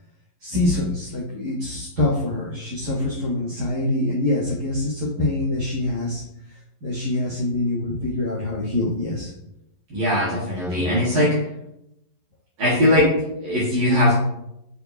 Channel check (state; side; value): late; left; 11 ms